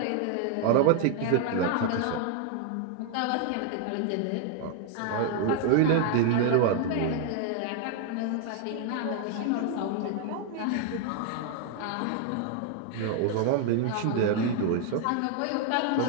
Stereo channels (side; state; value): both; different; correlation 0.00